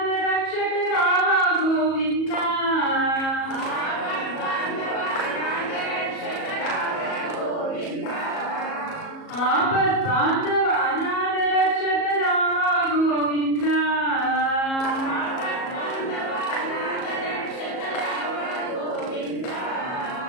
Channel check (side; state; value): right; late; 37 ms